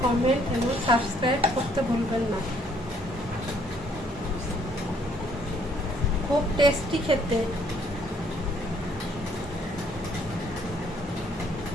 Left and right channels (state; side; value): normal; both; correlation 0.65